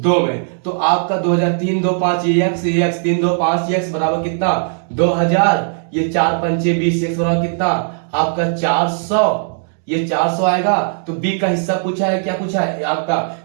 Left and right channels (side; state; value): left; silent; digital silence